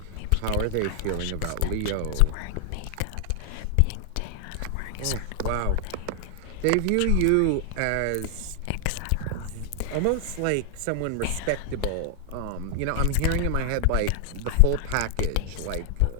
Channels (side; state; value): both; different; correlation 0.00